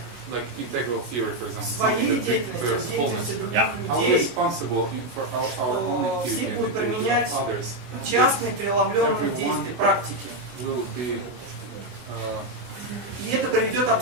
like integral theory, for example, something that bears wholeness, are we responsible for our own activity and the activity of others? частные преломленные действия, практики. Will be И это приведет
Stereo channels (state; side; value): late; left; 24 ms